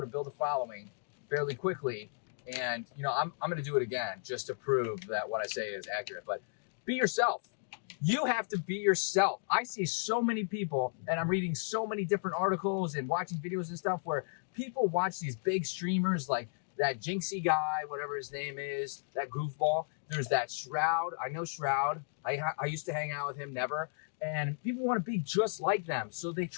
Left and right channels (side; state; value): right; silent; digital silence